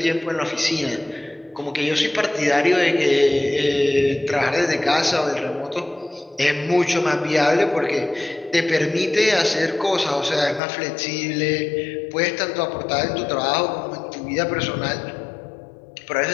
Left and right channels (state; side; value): drops out; right; at 10.6 s